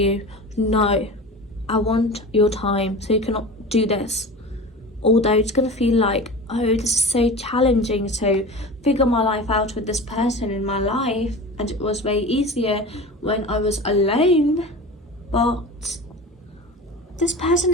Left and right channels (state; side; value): normal; both; correlation 0.34